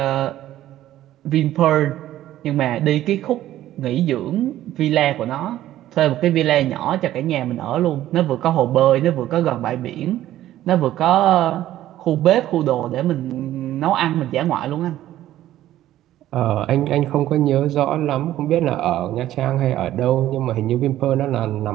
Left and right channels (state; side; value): quieter; left; 13.5 dB